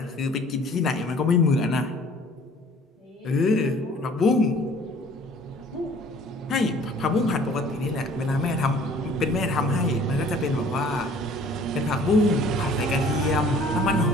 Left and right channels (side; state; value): both; normal; correlation 0.52